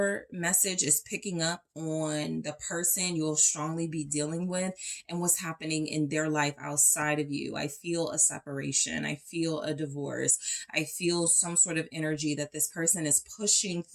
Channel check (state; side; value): identical; both; correlation 1.00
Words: message is picking up on the person you'll strongly be dealing with and what's happening in their life outside of you. I feel a separation. I feel a divorce. I feel some sort of energy that this person is pushing